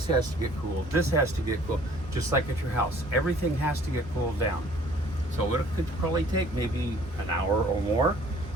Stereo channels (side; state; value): both; normal; correlation 0.55